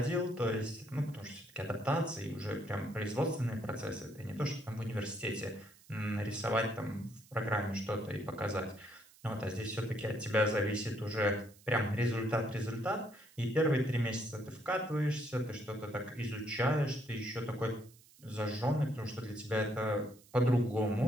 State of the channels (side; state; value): right; noise; hiss, 25 dB below the sound